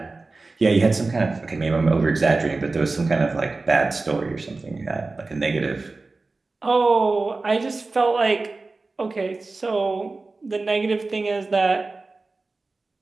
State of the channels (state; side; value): quieter; left; 3.6 dB